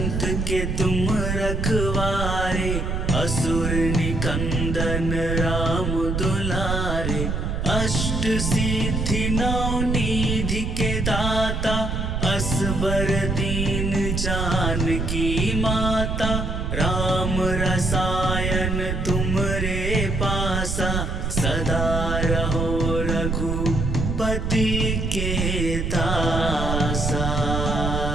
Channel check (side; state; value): right; noise; rumble, 2 dB below the sound